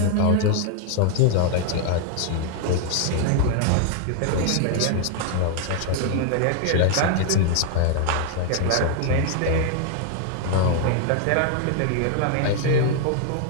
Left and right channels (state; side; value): different; both; correlation 0.00